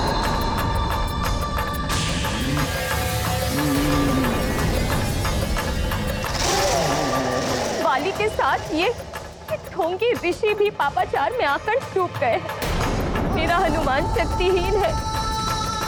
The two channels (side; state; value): both; identical; correlation 1.00